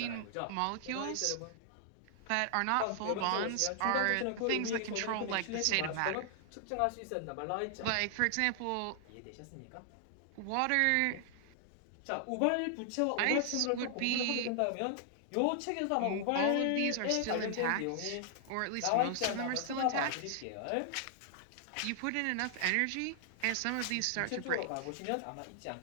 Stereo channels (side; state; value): both; different; correlation 0.00